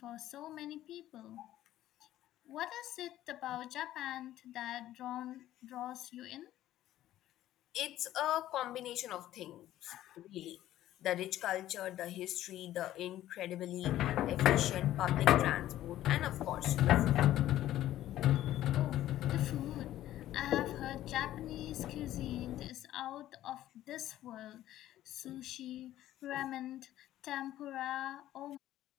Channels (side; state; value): right; quieter; 13.6 dB